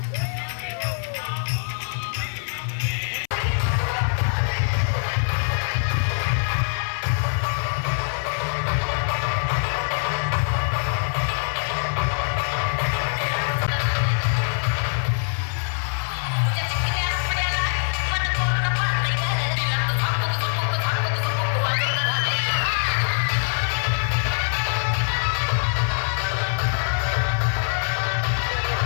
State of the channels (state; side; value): silent; right; 63 dB below the other